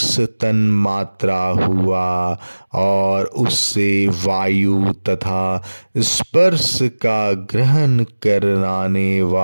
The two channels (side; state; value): both; inverted; correlation -1.00